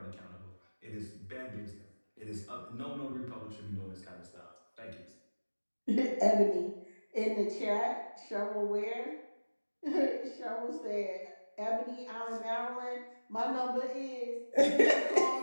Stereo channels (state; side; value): inverted; both; correlation -1.00